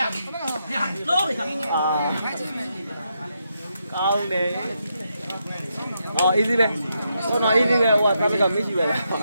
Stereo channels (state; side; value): inverted; both; correlation -0.81